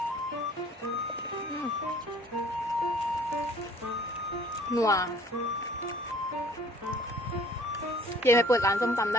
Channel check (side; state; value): both; normal; correlation 0.53